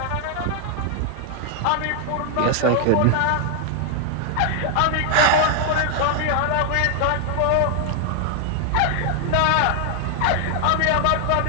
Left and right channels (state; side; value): different; both; correlation 0.00